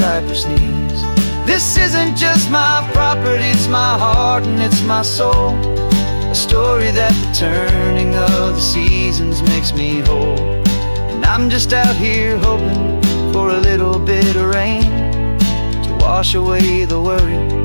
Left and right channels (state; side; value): inverted; both; correlation -1.00